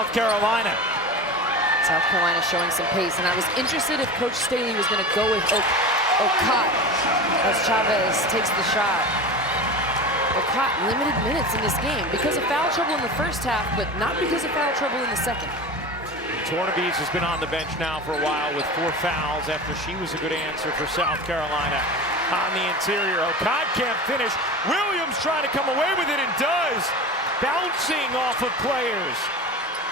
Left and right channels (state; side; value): normal; both; correlation 0.30